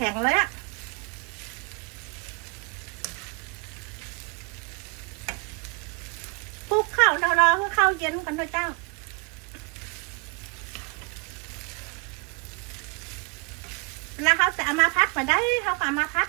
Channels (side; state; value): left; quieter; 33.9 dB